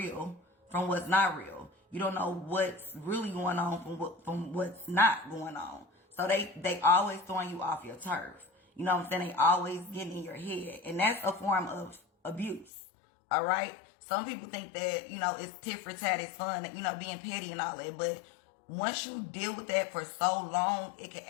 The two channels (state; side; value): drops out; right; at 12.7 s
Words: from what's not real. You don't know what's really going on from what's not going on. So they always throwing you off your turf. You know what I'm saying? They always getting in your head. And that's a form of abuse. All right? Some people think that, it's tit for tat, it's fun, being petty and all that. But once you deal with that for so long, it can